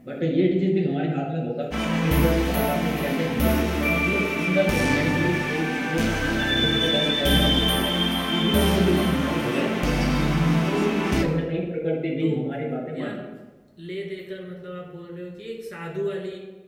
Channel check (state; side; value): identical; both; correlation 1.00